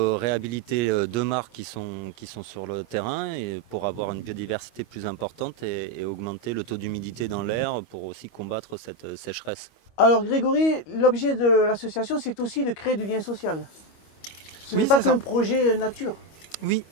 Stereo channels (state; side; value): late; right; 25 ms